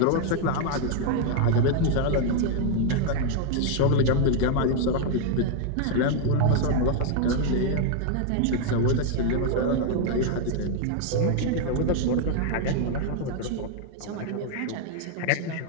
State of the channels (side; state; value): both; different; correlation 0.00